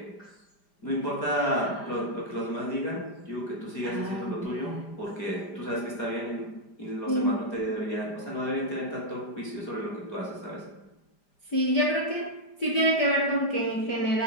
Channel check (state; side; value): late; right; 5.0 ms